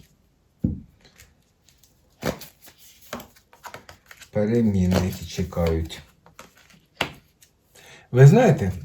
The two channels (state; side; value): identical; both; correlation 1.00